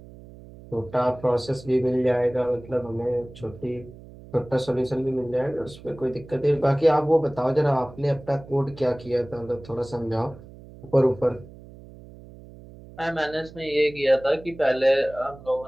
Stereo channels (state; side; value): noise; right; hum, 19 dB below the sound